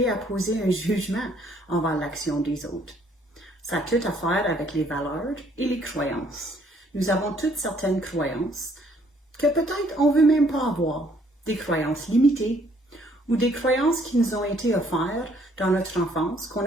à poser un jugement envers l'action des autres. Ça a tout à faire avec les valeurs et les croyances. Nous avons toutes certaines croyances que peut-être on ne veut même pas avoir, des croyances limitées ou des croyances qui nous ont été offertes dans notre enfance, qu'on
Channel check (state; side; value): normal; both; correlation 0.64